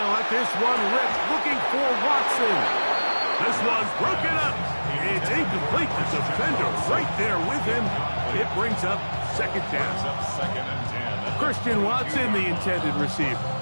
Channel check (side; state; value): both; inverted; correlation -1.00